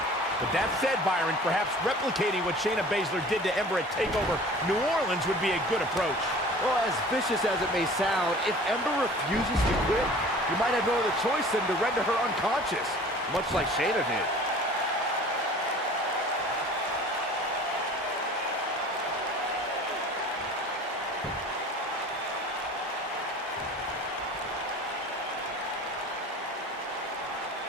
But that said, Byron, perhaps replicating what Shayna Baszler did to Ember at TakeOver New Orleans would be a good approach. Well, as vicious as it may sound, if Ember refuses to quit, you might have no other choice than to render her unconscious, much like Shayna did.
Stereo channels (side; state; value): both; normal; correlation 0.44